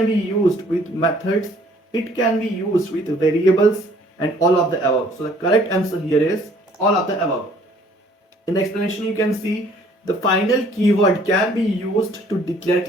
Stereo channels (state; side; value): normal; both; correlation 0.58